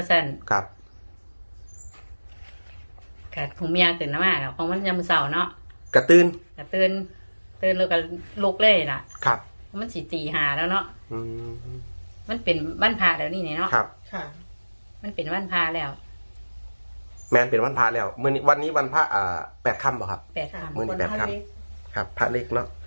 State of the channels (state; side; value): inverted; both; correlation -1.00